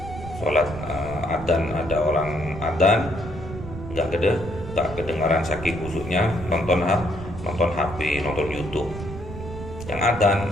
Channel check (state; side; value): noise; right; rumble, 11 dB below the sound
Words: Sholat adzan, ada orang adzan nggak kedengaran saking busuknya, nonton HP, nonton YouTube. Yang adzan